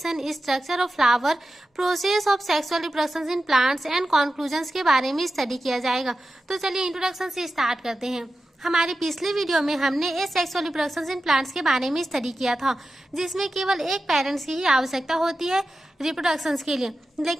structure of flower, process of sexual reproduction in plants and conclusions के बारे में स्टडी किया जाएगा। तो चलिए इंट्रोडक्शन से स्टार्ट करते हैं। हमारी पिछली वीडियो में हमने एसेक्सुअल रिप्रोडक्शन इन प्लांट्स के बारे में स्टडी किया था, जिसमें केवल एक पेरेंट्स की ही आवश्यकता होती है रिप्रोडक्शन के लिए।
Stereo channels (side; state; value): both; normal; correlation 0.93